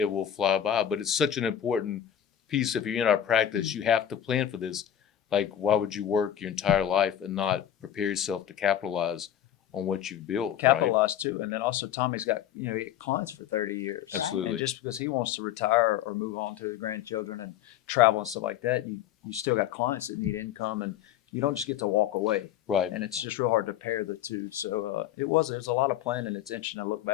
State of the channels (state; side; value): quieter; right; 10.6 dB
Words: will fly by. But it's such an important piece. If you're in our practice, you have to plan for this. Like, why would you work your entire life and not prepare yourself to capitalize on what you've built? Capitalize too. And then also Tommy's got, he had clients for 30 years. Absolutely. And just because he wants to retire or move on to the grandchildren and travel and stuff like that, you still got clients that need income, and you don't just get to walk away. Right. And it's just real hard to pair the two. So there's a lot of planning. It's interesting to look